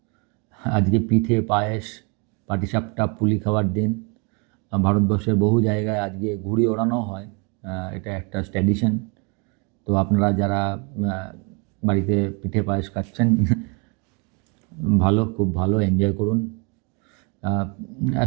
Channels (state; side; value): quieter; left; 33.3 dB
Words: আজকে পিঠে, পায়েস, পাটিসাপটা, পুলি খাওয়ার দিন। ভারতবর্ষের বহু জায়গায় আজকে ঘুড়ি ওড়ানো হয়, এটা একটা ট্র্যাডিশন। তো আপনারা যারা বাড়িতে পিঠে পায়েস খাচ্ছেন, খুব ভালো এনজয় করুন।